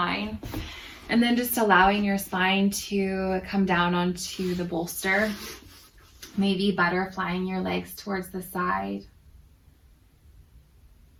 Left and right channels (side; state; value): both; identical; correlation 1.00